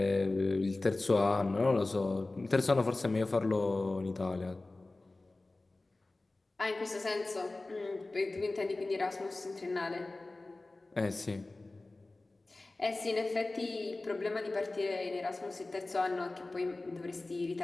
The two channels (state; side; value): quieter; right; 3.1 dB